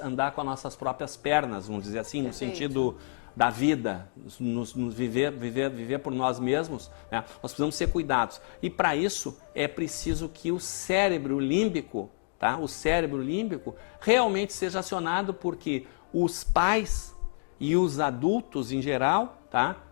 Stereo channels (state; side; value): silent; right; digital silence